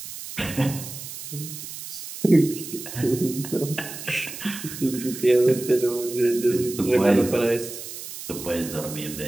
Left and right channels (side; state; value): right; noise; hiss, 10 dB below the sound